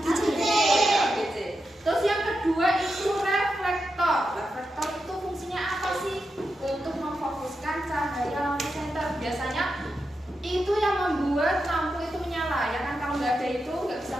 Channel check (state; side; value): normal; both; correlation 0.88